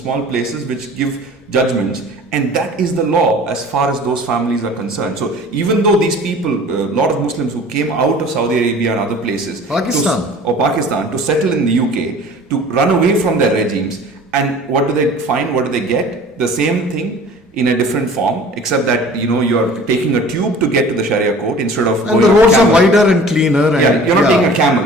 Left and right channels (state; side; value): normal; both; correlation 0.45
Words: places which give judgments. And that is the law as far as those families are concerned. So even though these people, a lot of Muslims who came out of Saudi Arabia and other places, Pakistan, to settle in the UK, to run away from their regimes, and what do they find? What do they get? The same thing in a different form, except that you're taking a tube to get to the Sharia court instead of and the roads are wider and cleaner. And you're not taking a